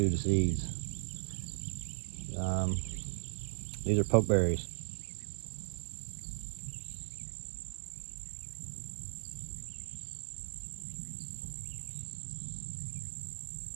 the seeds. These are pokeberries.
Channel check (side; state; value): left; silent; digital silence